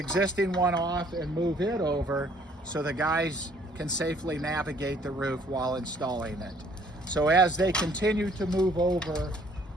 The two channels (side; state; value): both; normal; correlation 0.60